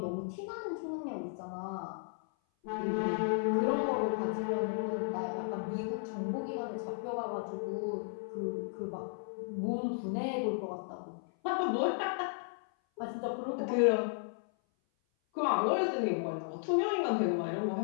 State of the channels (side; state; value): right; silent; 55 dB below the other